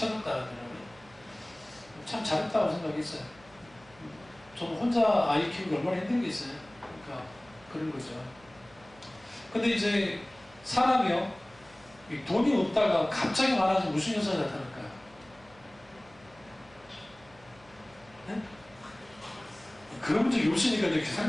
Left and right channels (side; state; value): right; noise; hum, 26 dB below the sound